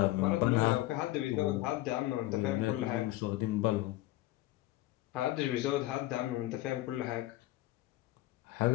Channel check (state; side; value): quieter; right; 17.0 dB